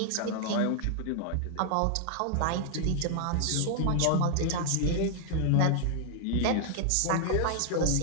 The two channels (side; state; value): both; different; correlation 0.00